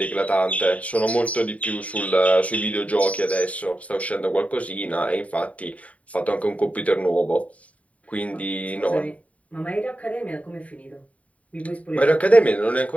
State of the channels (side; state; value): right; late; 0.067 ms